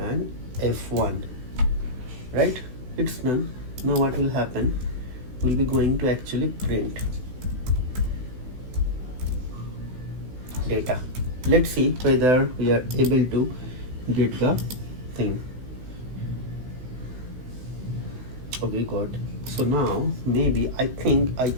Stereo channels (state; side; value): late; left; 16 ms